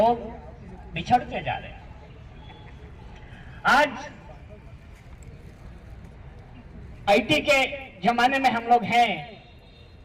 बिछड़ते जा रहे हैं। आज आईटी के जमाने में हम लोग हैं।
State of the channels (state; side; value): identical; both; correlation 1.00